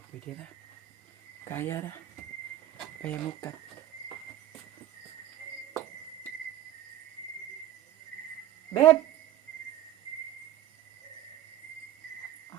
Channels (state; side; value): quieter; left; 12.7 dB